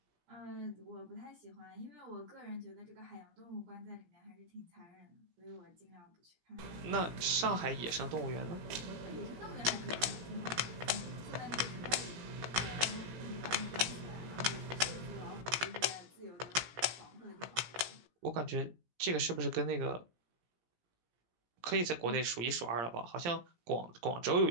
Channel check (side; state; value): left; late; 17 ms